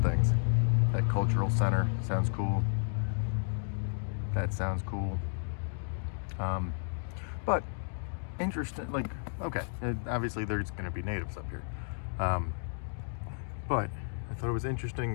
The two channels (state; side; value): silent; right; digital silence